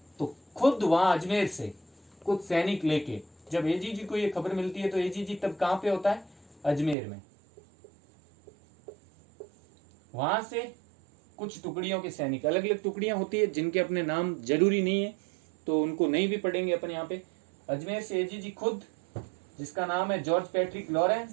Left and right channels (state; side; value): drops out; left; at 7.0 s